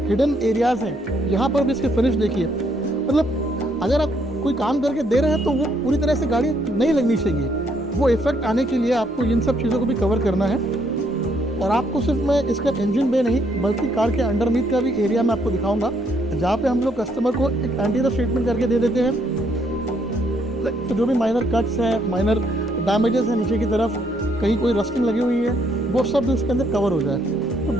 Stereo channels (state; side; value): normal; both; correlation 0.70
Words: हिडन एरियाज़ हैं यहाँ पर भी इसके फिनिश देखिए। मतलब अगर आप कोई काम करके दे रहे हैं तो वो पूरी तरह से गाड़ी नहीं लगनी चाहिए, वो इफेक्ट आने के लिए आपको इन सब चीज़ों को भी कवर करना है। और आपको सिर्फ मैं इसका इंजन बे नहीं बल्कि कार के अंडरनीथ का भी एरिया मैं आपको दिखाऊंगा, जहाँ पे हम लोग कस्टमर को एक एंटी रस्ट ट्रीटमेंट करके दे देते हैं। तो जो भी माइनर कट्स हैं, माइनर डैमेजेस हैं नीचे की तरफ, कहीं कोई रस्टिंग लगी हुई है, वो सब इसके अंदर कवर हो जाए। तो